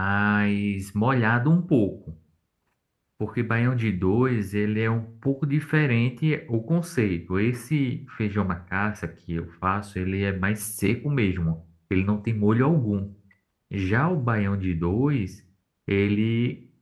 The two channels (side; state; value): both; identical; correlation 1.00